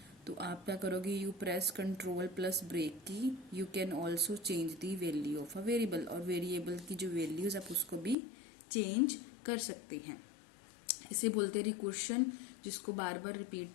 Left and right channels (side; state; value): right; drops out; at 8.2 s